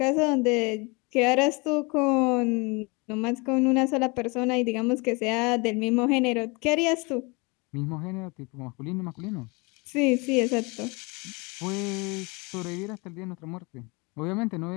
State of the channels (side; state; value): right; quieter; 28.4 dB